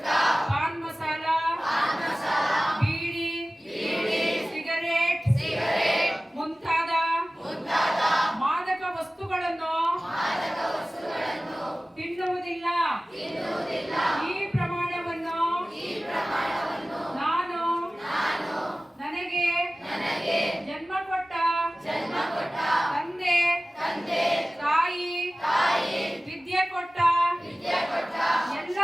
ಪಾನ್ ಮಸಾಲ ಬೀಡಿ ಸಿಗರೇಟ್ ಮುಂತಾದ ಮಾದಕ ವಸ್ತುಗಳನ್ನು ತಿನ್ನುವುದಿಲ್ಲ. ಈ ಪ್ರಮಾಣವನ್ನು ನಾನು ನನಗೆ ಜನ್ಮ ಕೊಟ್ಟ ತಂದೆ ತಾಯಿ ವಿದ್ಯೆ ಕೊಟ್ಟ ಎಲ್ಲ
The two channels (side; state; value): both; normal; correlation 0.97